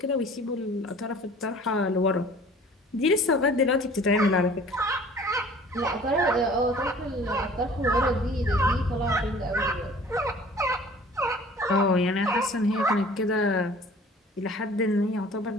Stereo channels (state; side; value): normal; both; correlation 0.49